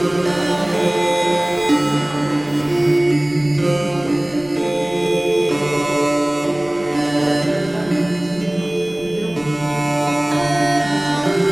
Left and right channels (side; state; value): right; noise; rumble, 25 dB below the sound